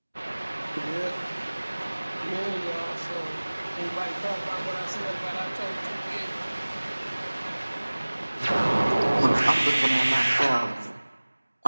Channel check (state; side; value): inverted; both; correlation -1.00